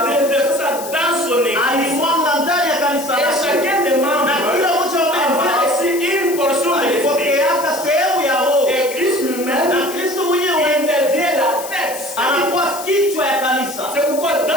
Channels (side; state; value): left; noise; hiss, 12 dB below the sound